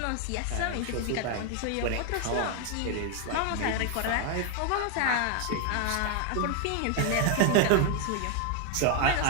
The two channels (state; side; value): different; both; correlation 0.01